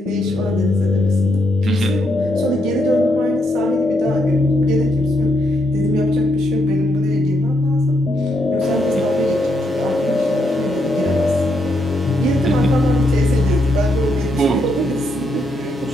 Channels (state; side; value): normal; both; correlation 0.78